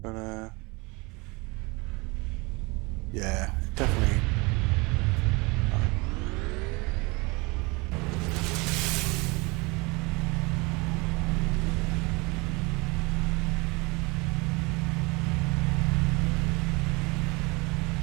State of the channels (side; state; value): left; quieter; 26.4 dB